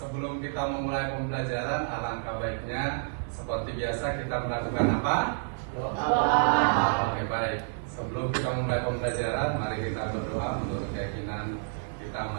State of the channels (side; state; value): left; silent; digital silence